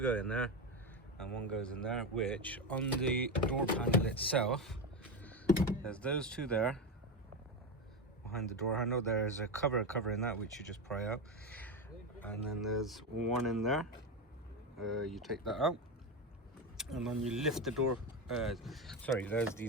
go in there, and 1 goes in there, which on the door panel itself, there's those 2 there. Behind the door handle, there's a cover covering that, which you just pry out. And then there's 1 in there. You take that out. And then you lift the door, sorry, there's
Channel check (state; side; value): normal; both; correlation 0.15